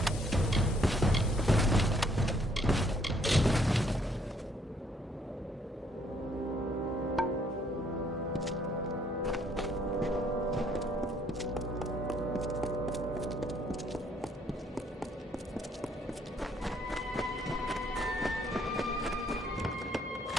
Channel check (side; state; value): both; normal; correlation 0.67